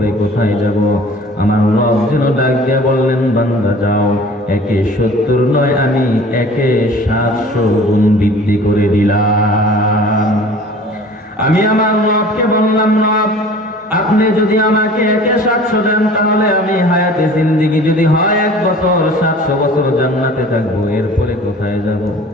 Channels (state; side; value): normal; both; correlation 0.46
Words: কোথায় যাব? আমার রব যেন ডাক দিয়ে বললেন, বান্দা যাও, 70 নয়, আমি 700 গুণ বৃদ্ধি করে দিলাম। আমি আমার রবকে বললাম, রব আপনি যদি আমাকে 700 দেন, তাহলে আমি হায়াতে জিন্দেগি যদি হয় 1 বছর, 700 বছর জান্নাতে থাকবো, এরপরে কোথায় যাব?